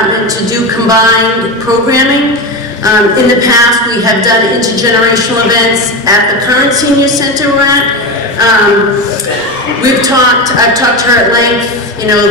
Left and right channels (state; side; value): normal; both; correlation 0.20